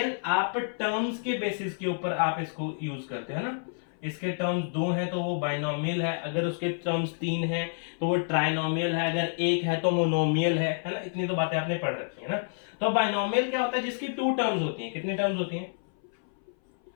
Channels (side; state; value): right; silent; 57 dB below the other